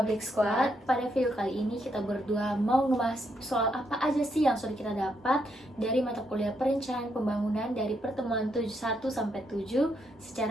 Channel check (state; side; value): normal; both; correlation 0.77